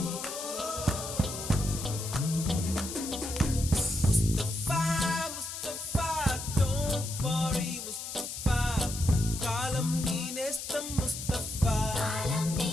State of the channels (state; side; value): noise; left; hiss, 7 dB below the sound